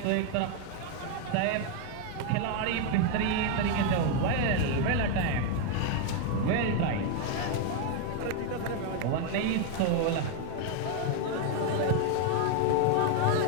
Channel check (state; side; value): different; both; correlation 0.01